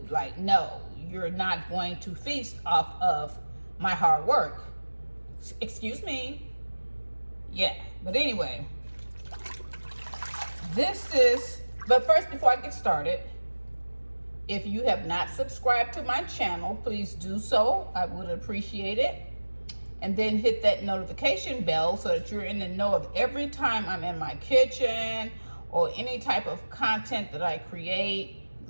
Like, no, you're not going to feast off of my hard work. Excuse me. Yeah, but anyway, but first, before I get started, if you have not subscribed to my channel, please do so. I would appreciate it. And then hit that notification bell so that you're in the know of every time I'm in my kitchen or any type of content that I create,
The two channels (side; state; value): both; inverted; correlation -1.00